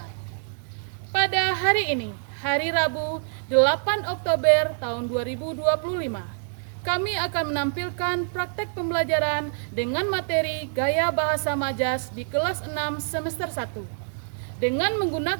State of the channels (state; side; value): silent; left; 61 dB below the other